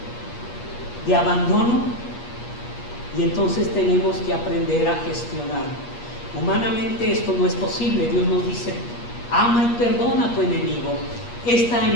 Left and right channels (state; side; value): late; right; 8.4 ms